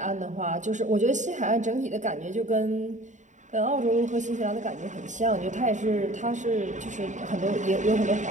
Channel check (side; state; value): left; late; 0.35 ms